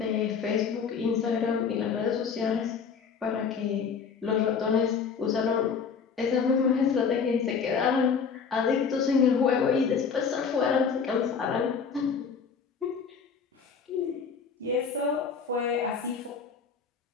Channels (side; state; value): right; quieter; 6.1 dB